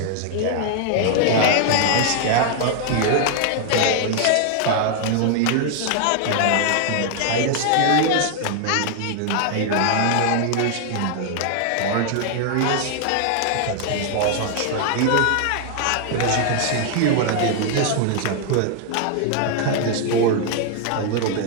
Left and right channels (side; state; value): both; different; correlation 0.00